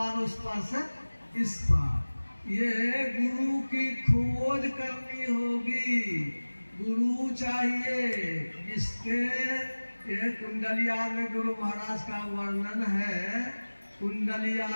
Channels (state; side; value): inverted; both; correlation -1.00